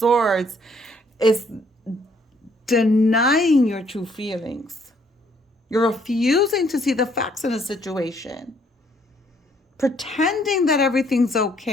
is denying your true feelings. You're refusing to see the facts in a situation, pretending that everything's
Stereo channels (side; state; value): both; normal; correlation 0.66